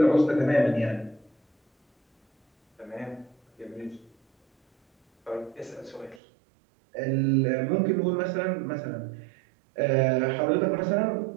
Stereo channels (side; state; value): left; drops out; at 6.2 s